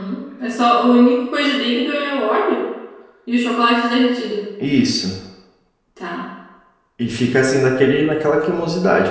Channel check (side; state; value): both; identical; correlation 1.00